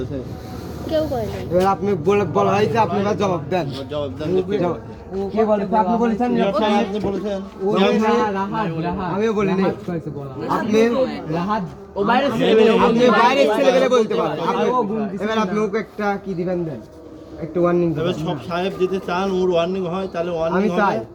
কেউ করে নাই। এবার আপনি বলা হয়েছে, আপনি এবার জবাব দেন। জবাব দেন যে কে বলেছে? কে বলেছে? আপনি বলেছেন। নিয়োগ সাহেব আপনি বলেছেন আমিও বলিনি। আপনি ও বাইরে আপনি বাইরের ছেলেবেলে বলতে পারেন। এবার আপনি ওকে একটা কি দিবেন দেন, একটু ওয়ার্নিং তবে দিবেন। সব সাহেব যদি চান ওর ওয়ার্নিং হয় তাহলে ওয়ার্নিং আমি হবে। চাই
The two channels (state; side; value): identical; both; correlation 1.00